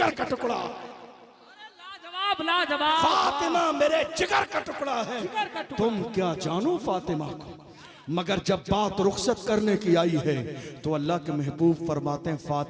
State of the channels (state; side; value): identical; both; correlation 1.00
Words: का टुकड़ा, लाजवाब लाजवाब, फातिमा मेरे जिगर का टुकड़ा है। तुम क्या जानो फातिमा को। मगर जब बात रुखसत करने की आई है तो अल्लाह के महबूब फरमाते हैं,